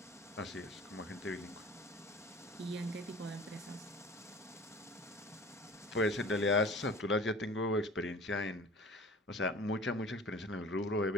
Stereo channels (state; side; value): normal; both; correlation 0.43